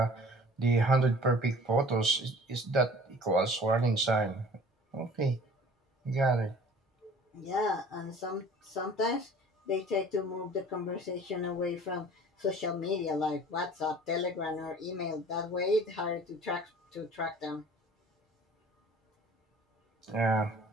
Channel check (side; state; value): both; normal; correlation 0.47